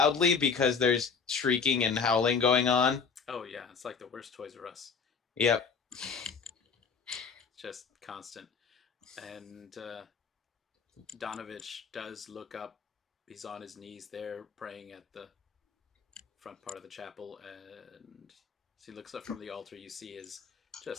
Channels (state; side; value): quieter; right; 5.7 dB